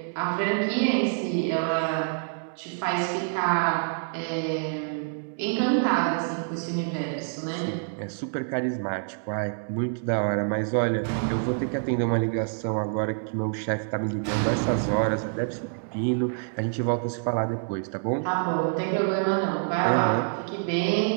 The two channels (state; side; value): silent; left; digital silence